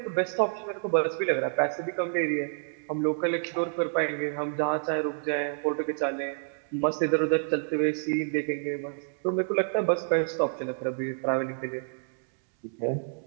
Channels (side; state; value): left; silent; digital silence